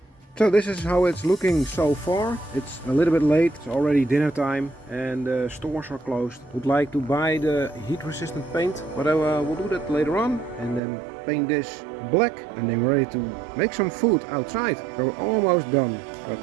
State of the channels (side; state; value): left; drops out; at 10.8 s